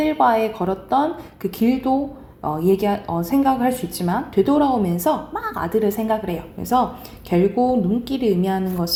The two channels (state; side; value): identical; both; correlation 1.00